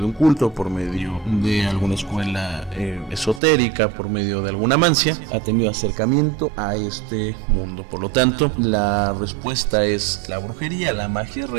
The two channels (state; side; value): drops out; left; at 3.4 s